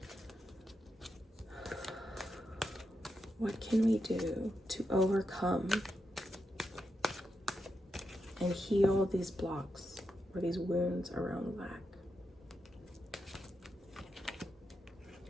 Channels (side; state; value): both; normal; correlation 0.85